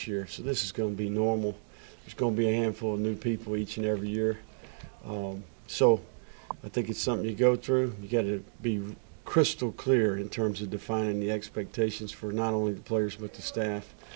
year. So this is going to be normal. There's going to be a handful of new people each and every year. So I think it's something you go through. You got to be crystal clear in terms of defining the expectations for not only the players but the staff.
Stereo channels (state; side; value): silent; left; digital silence